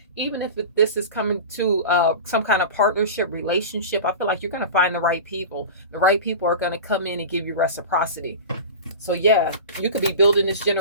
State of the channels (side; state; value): both; inverted; correlation -0.30